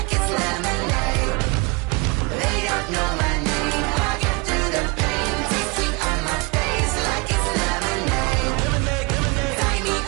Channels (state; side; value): quieter; left; 28.6 dB